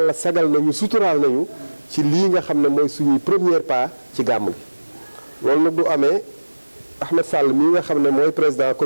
sagal nañu suturaal nañu ci lii nga xam ne mooy suñuy premier pas ci gàmm gi. loolu nag du amee Ahmed Sall mii nga xam ne mooy président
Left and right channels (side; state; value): both; inverted; correlation -1.00